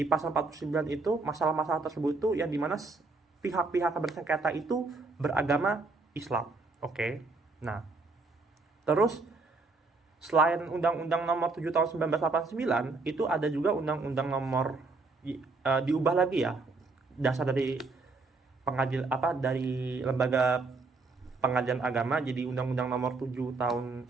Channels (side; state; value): left; quieter; 3.7 dB